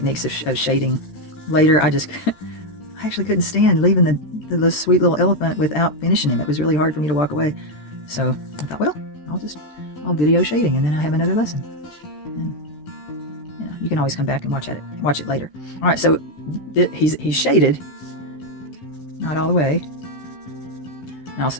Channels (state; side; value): late; right; 13 ms